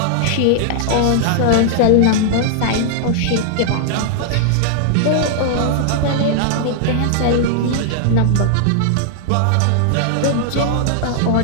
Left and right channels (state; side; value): different; both; correlation -0.01